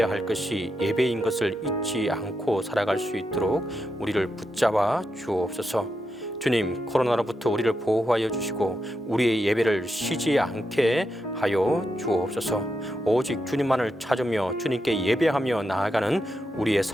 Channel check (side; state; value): both; normal; correlation 0.85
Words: 할 것이 예배인 것을 잊지 않고 살아갈 수 있도록 우리를 붙잡아 주옵소서. 주님, 코로나로부터 우리를 보호하여 주시고 우리의 예배를 쉬지 않게 하여 주옵소서. 오직 주님만을 찾으며 주님께 예배하며 나아가는 우리의